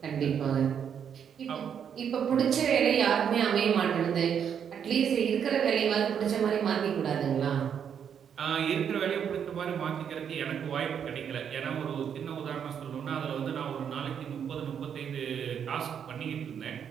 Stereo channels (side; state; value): left; quieter; 8.0 dB